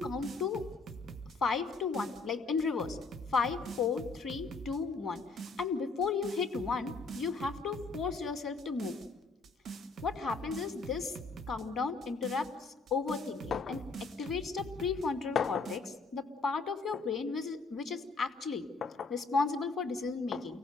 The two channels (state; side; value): quieter; right; 4.0 dB